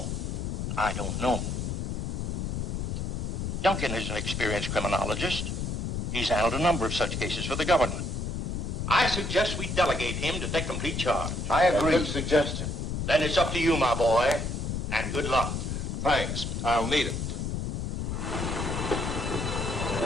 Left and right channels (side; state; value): left; noise; rumble, 2 dB below the sound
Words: I don't know. Duncan is an experienced criminologist. He's handled a number of such cases for the government. I suggest we delegate him to take complete charge. I agree. Good suggestion. Then it's up to you, my boy, and good luck. Thanks. I'll need it.